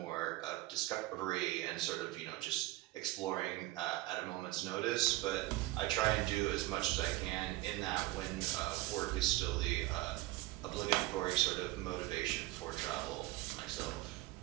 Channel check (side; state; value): left; quieter; 18.5 dB